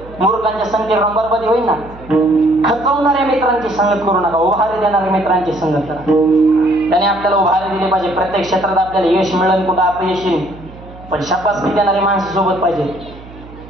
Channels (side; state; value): right; noise; hum, 18 dB below the sound